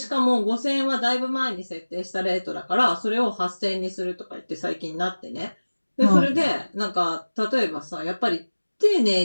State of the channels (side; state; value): both; inverted; correlation -1.00